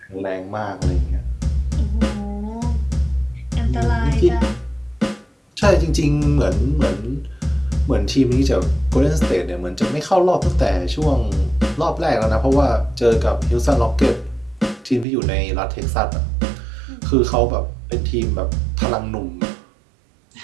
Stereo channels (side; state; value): left; drops out; at 15.1 s